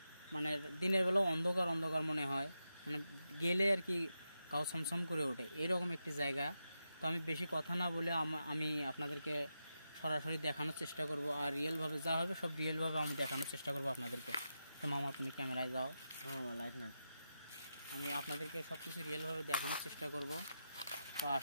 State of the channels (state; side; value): inverted; both; correlation -0.88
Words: মানে দিনের বেলা অন্ধকার অন্ধকার মনে হয়, মানে গেলে আর কি গাও ছমছম করে ওঠে, এরকম একটি জায়গা। তো আমি বেশি কথা না বলে আমি আপনাদেরকে সরাসরি দেখানোর চেষ্টা করব, আর রিয়েলভাবে যা হবে সব রিয়েলভাবে আমি দেখানোর চেষ্টা করব আপনাদেরকে। তো মামা, তুমি ক্যামেরায় যাও। লাইট না, আমি আপনাদেরকে সব কিছু রিয়েলভাবে দেখানোর চেষ্টা করব। তো